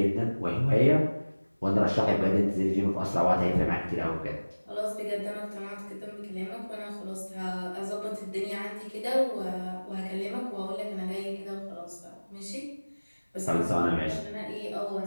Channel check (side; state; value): both; inverted; correlation -1.00